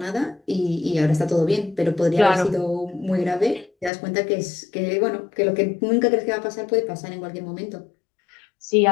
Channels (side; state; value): right; drops out; at 3.9 s